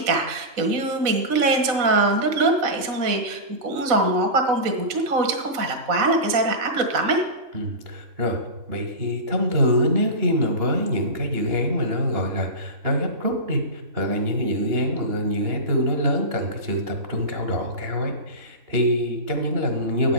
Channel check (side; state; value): left; late; 4.0 ms